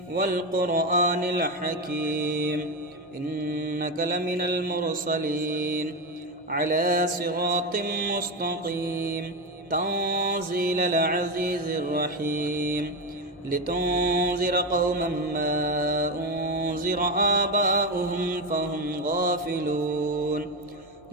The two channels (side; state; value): both; normal; correlation 0.14